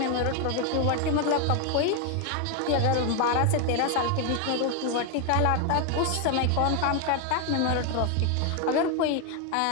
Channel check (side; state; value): both; different; correlation 0.01